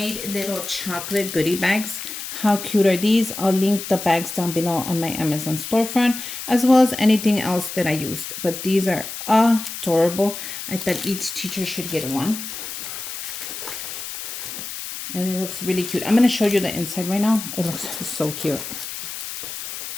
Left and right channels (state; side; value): noise; left; hiss, 8 dB below the sound